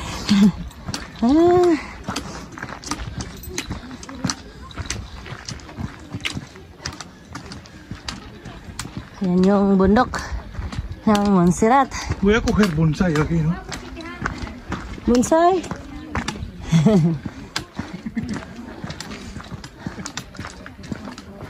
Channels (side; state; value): both; identical; correlation 1.00